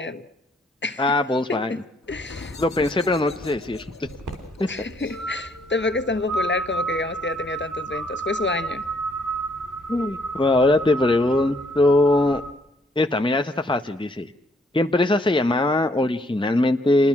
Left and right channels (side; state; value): both; normal; correlation 0.68